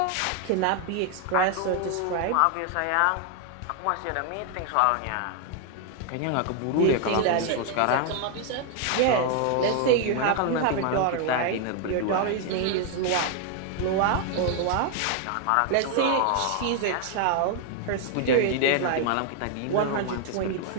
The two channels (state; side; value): different; both; correlation 0.00